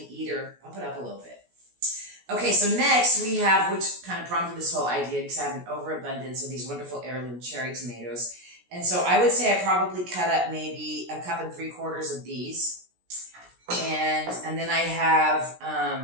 eater, bump it up a little bit. Okay, so next we have, which kind of prompted this whole idea, because I have an overabundance of these wonderful heirloom cherry tomatoes. And so I would say I probably cut up maybe 1 3/4 of these. And then I have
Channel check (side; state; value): left; late; 17 ms